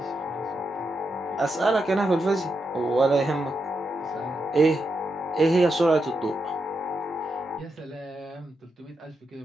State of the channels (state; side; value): normal; both; correlation 0.85